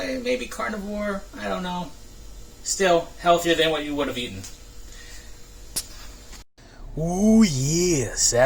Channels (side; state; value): both; identical; correlation 1.00